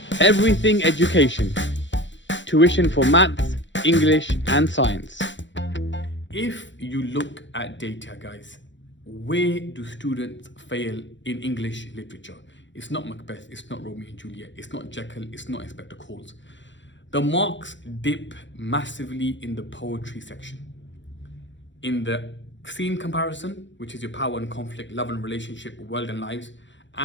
Everything education. Tuition for maths, English and science. If you look at data, guys, where do students fail in English literature? It's not Macbeth, it's not Romeo and Juliet, it's not Jekyll, it's not Inspector Calls. The marks dip massively in the poetry section. In the scene comparison, which is your power and conflict, love and relationship, world and lives,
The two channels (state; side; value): late; right; 0.54 ms